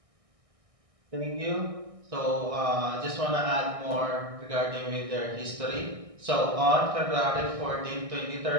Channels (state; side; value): late; left; 1.6 ms